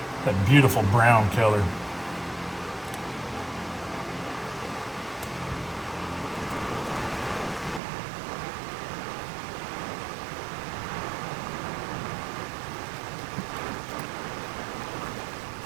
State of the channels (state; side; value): drops out; left; at 7.8 s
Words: That beautiful brown color.